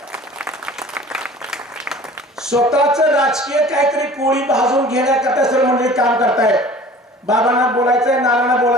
स्वतःच राजकीय काहीतरी पोळी भाजून घेण्याकरता सर्व मंडळी काम करतायत. बाबांना बोलायचंय, नानांना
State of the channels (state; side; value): normal; both; correlation 0.45